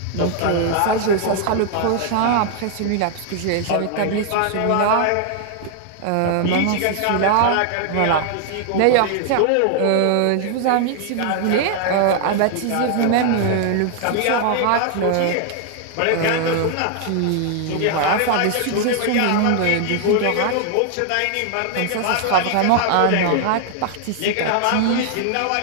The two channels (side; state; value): both; different; correlation 0.00